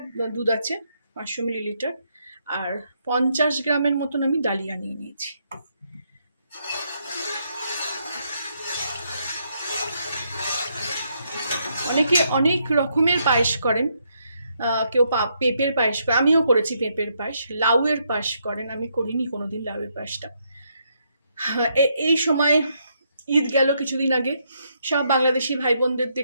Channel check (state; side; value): inverted; both; correlation -0.76